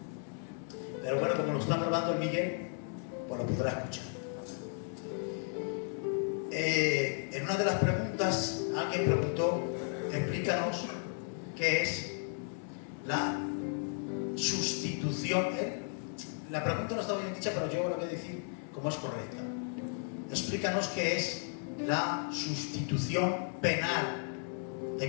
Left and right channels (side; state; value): right; silent; 55 dB below the other